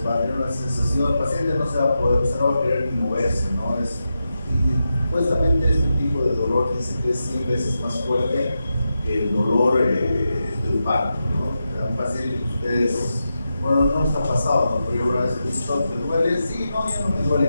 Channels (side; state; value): both; inverted; correlation -0.89